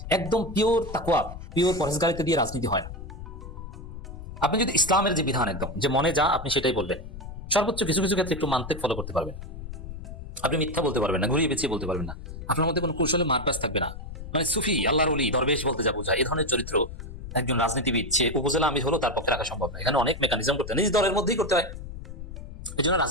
একদম পিওর তাকওয়া, পিওর পরেজগারিতে দিয়ে রাজনীতি হয় না। আপনি যদি ইসলামের যে বিধান একদম যে মনে যা আপনি সেটাই বলবেন, সর্বোচ্চ কিছু কিছু ক্ষেত্রে একটু মানতেক ফলো করতে পারবেন, আপনি মিথ্যা বলতে পারবেন না, ঘুরিয়ে পেঁচিয়ে বলতে পারবেন না, আপনার মধ্যে কোনো কৌশলে মারপ্যাচ থাকবে না। মানে সুফি, আল্লাহর ওলি, দরবেশ বলতে যা বোঝায়, এই ধরনের চরিত্র একজন রাজনীতিবিদ সে উপজেলা আমির হলো তার পক্ষে রাখা সম্ভব না। এখানে অনেক মেকানিজম করতে হয়, নিজ দলের মধ্যেই করতে হয়। এই জন্য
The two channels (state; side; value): noise; left; rumble, 10 dB below the sound